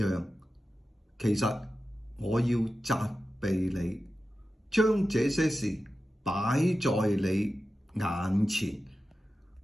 其實我要責備你，將這些事擺在你眼前。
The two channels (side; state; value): both; normal; correlation 0.92